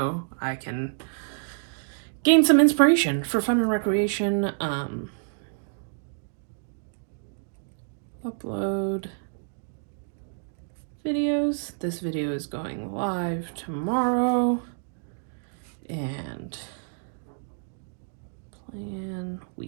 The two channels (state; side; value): silent; left; digital silence